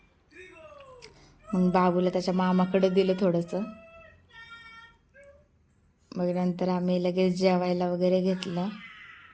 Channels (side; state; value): both; identical; correlation 1.00